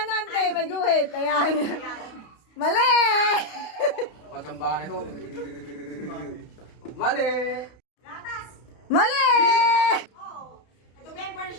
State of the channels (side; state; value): right; late; 32 ms